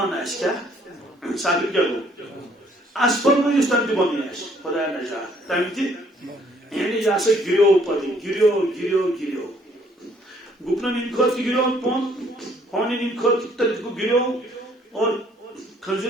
اس کیا سافل کیا گو اسفل میں اس تم بن اس خدا نجات تم تھی یعنی یا سے گریو پڑی گریو گریو گریو گپنا نیم خود گریو پون ہونے نیم خود تک گریو اور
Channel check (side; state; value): both; normal; correlation 0.63